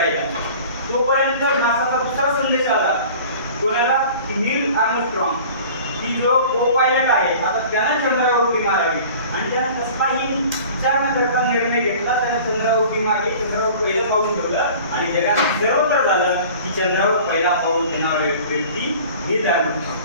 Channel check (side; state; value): both; inverted; correlation -0.43